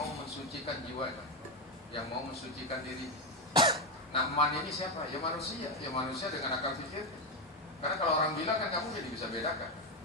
mensucikan jiwanya, yang mau mensucikan diri. Nah, man ini siapa? Ya manusia dengan akal pikir. Karena kalau orang gila kan kamu jadi bisa bedakan,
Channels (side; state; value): both; normal; correlation 0.09